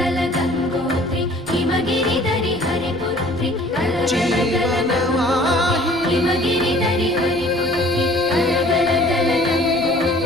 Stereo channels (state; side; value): noise; left; rumble, 22 dB below the sound